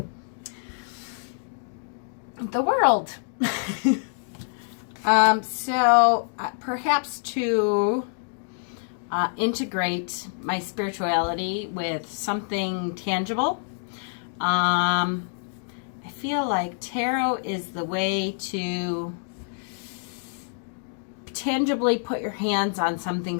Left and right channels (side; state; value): right; silent; digital silence